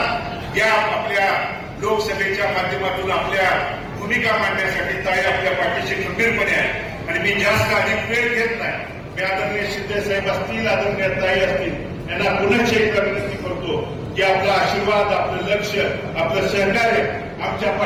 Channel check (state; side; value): identical; both; correlation 1.00